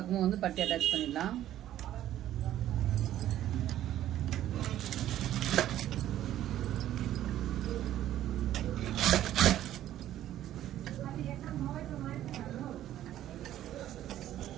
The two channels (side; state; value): left; quieter; 12.5 dB